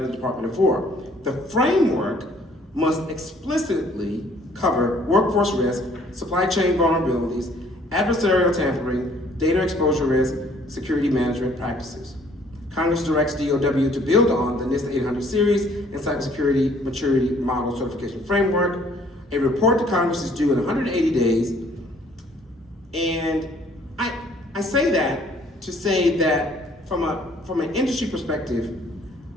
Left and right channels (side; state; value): both; normal; correlation 0.60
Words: Department of War. The framework must explicitly cover workforce risk, supply chain vulnerabilities, adversarial tampering, data exposure risk, security management practices. Congress directs DOW to build on the NIST 800 series and cybersecurity maturity model certification framework. A report to Congress is due in 180 days. And I say that to say that from an industry perspective,